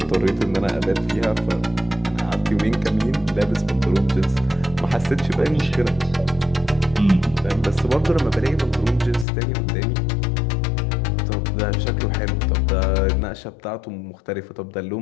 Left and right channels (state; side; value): drops out; right; at 9.2 s